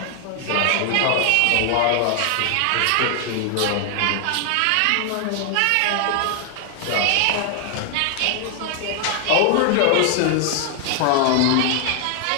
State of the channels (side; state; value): both; different; correlation 0.00